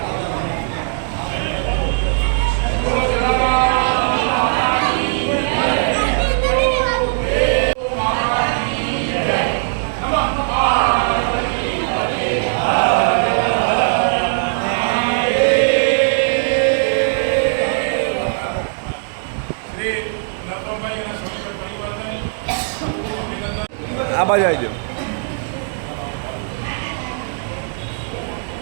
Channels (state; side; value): silent; left; digital silence